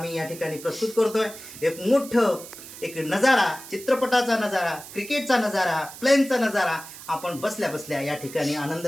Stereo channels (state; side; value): noise; right; hiss, 15 dB below the sound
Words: या ठिकाणी प्रस्तुत करतोय. एक मोठं एक नजारा, चित्रपटाचा नजारा, क्रिकेटचा नजारा, प्लेनचा नजारा आपण बसल्या बसल्या या ठिकाणी आनंद